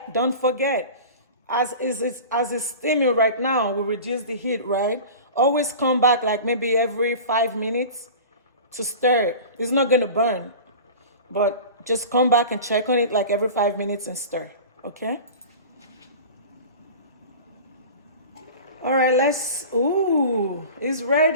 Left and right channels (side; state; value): both; inverted; correlation -0.36